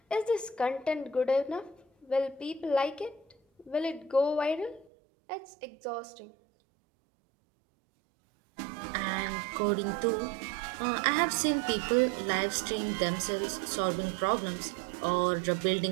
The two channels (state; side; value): drops out; left; at 4.9 s